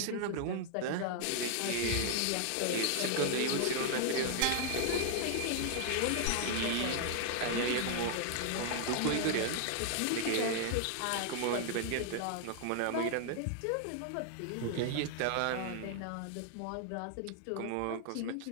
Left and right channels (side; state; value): both; different; correlation 0.00